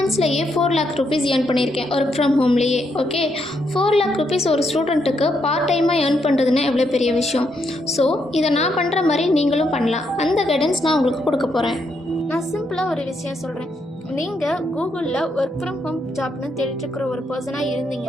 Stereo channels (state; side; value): normal; both; correlation 0.78